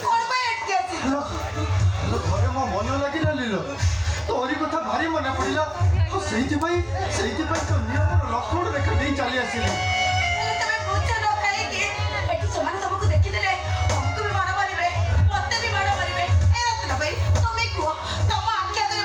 କଣ ପାଇଁ ଏଠିକି ଆସିଛ? ଘରେ ମୋ ମନ ଲାଗିଲା ଲିଲ ତୋରି କଥା ଭାରି ମନେ ପଡ଼ିଲା ସେଇଥିପାଇଁ ତ ନିୟମର ଲକ୍ଷ୍ମଣ ରେଖା ଦେଇ ଚାଲି ଆସିଲି। ହେଲେ ତମେ ବୁଝ ନ କାହିଁକି? ଏଠି ସେମାନେ ତମକୁ ଦେଖିଦେଲେ ତମକୁ ବି ମାଡ଼ ମାରିବେ, ମତେ ବି ମାଡ଼ ମାରିବେ। ଏ ରତ୍ନ ଭାଇ ତମେ କୁହ, ତମ ଆଖି ଆଗରେ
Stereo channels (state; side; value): identical; both; correlation 1.00